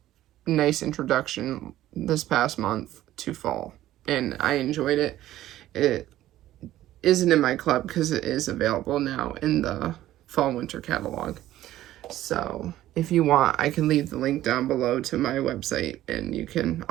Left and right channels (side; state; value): left; quieter; 14.1 dB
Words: nice introduction this past month to fall, and I enjoyed it. It isn't in my club because it is available now in the fall winter catalog. So if you want, I can leave the link down below to my website, and